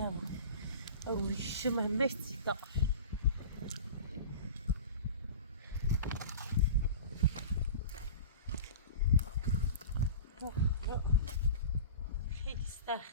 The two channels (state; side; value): inverted; both; correlation -0.34